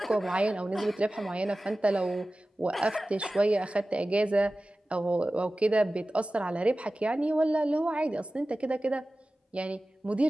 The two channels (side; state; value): both; normal; correlation 0.96